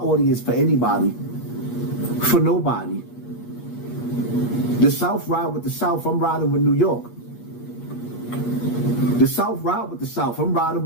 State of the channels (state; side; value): late; right; 8.4 ms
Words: for anybody, for nobody. The South ride with the South, I'm riding with New York. The South ride with the South, I'm riding